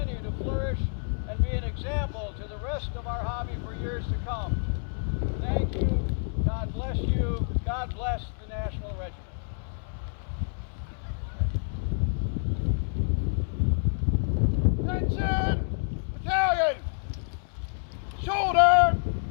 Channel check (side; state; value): right; silent; digital silence